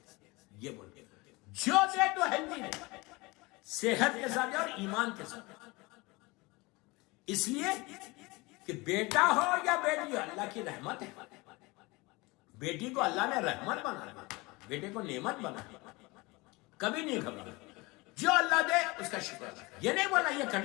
یہ بولے جو دے تو ہیلتھی دے، صحت کے ساتھ اور ایمان کے ساتھ. اس لیے کہ بیٹا ہو یا بیٹی ہو اللہ کی رحمت ہے. بیٹی کو اللہ نے رحمت بنایا، بیٹے کو نعمت بنایا. کبھی نہیں گھبرانا، جو اللہ دے اس کا شکر ہے. یہ نہیں بولا یہ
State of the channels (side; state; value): right; quieter; 24.1 dB